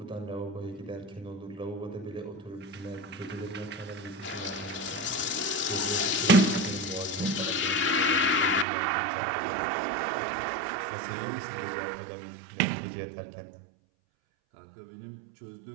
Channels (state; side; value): drops out; left; at 8.7 s